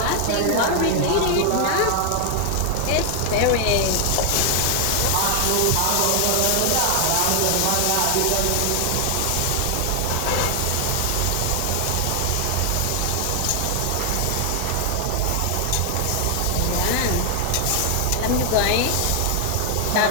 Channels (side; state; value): both; different; correlation 0.00